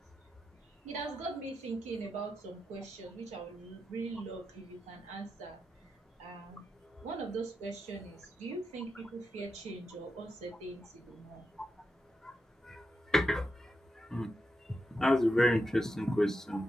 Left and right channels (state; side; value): normal; both; correlation 0.87